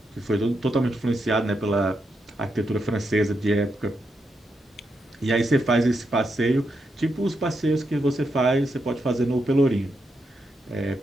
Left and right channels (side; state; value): both; normal; correlation 0.83